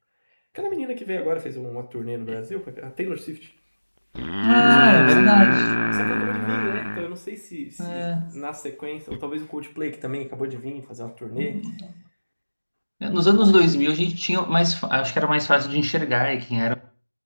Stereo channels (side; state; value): both; inverted; correlation -1.00